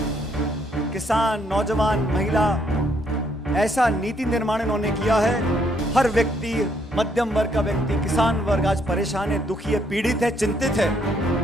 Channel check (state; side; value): normal; both; correlation 0.70